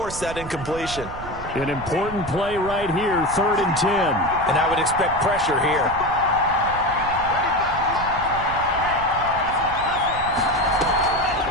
that incompletion. An important play right here, 3rd and 10. And I would expect pressure here.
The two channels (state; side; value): noise; right; rumble, 12 dB below the sound